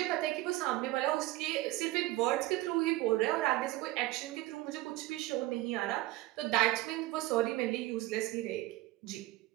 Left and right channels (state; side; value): quieter; left; 17.8 dB